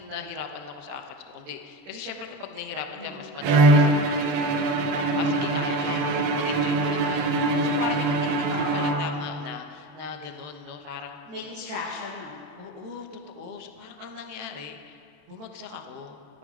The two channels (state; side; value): late; left; 28 ms